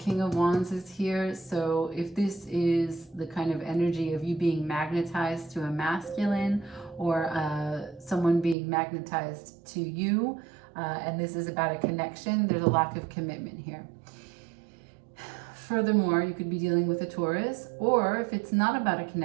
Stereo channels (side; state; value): left; drops out; at 8.6 s